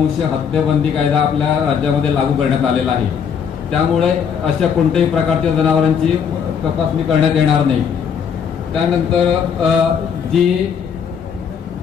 हत्याबंदी कायदा आपल्या राज्यामध्ये लागू करण्यात आलेला आहे. त्यामुळे अशा कोणत्याही प्रकारच्या जनावरांची तपासणी करण्यात येणार नाही. त्यानंतर जी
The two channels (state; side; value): quieter; right; 7.3 dB